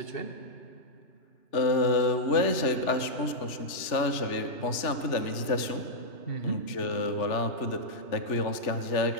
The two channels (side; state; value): right; late; 3.4 ms